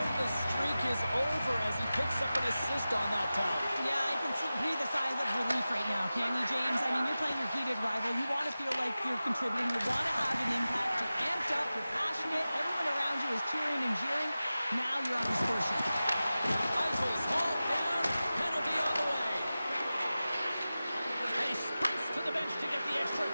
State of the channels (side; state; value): both; inverted; correlation -0.95